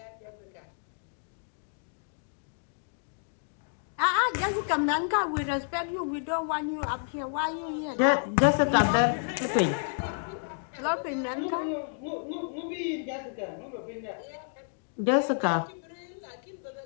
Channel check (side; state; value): right; silent; digital silence